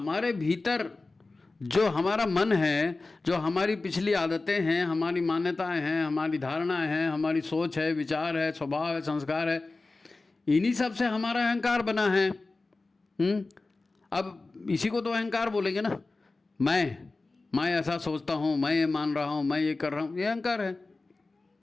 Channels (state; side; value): quieter; right; 3.5 dB